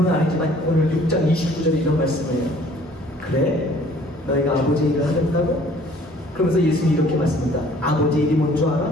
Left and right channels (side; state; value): both; normal; correlation 0.55